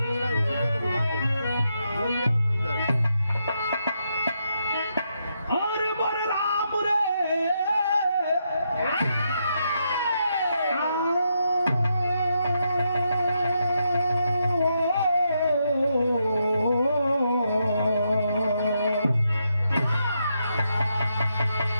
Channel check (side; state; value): both; inverted; correlation -0.81